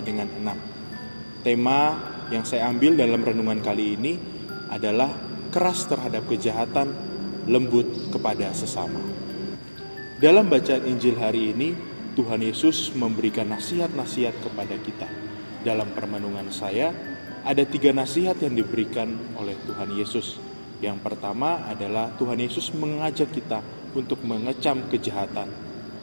dengan 6. Tema yang saya ambil dalam renungan kali ini adalah keras terhadap kejahatan, lembut kepada sesama. Dalam bacaan Injil hari ini, Tuhan Yesus memberikan nasihat-nasihat kepada kita. Dalam permenungan saya, ada 3 nasihat yang diberikan oleh Tuhan Yesus. Yang pertama adalah Tuhan Yesus mengajak kita untuk mengecam kejahatan.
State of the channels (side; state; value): both; inverted; correlation -1.00